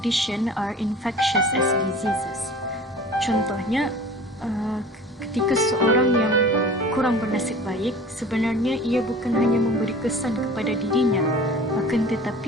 are infectious as diseases. Contohnya, ketika seorang yang kurang bernasib baik, sebenarnya ia bukan hanya memberi kesan kepada dirinya, akan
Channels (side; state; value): both; normal; correlation 0.42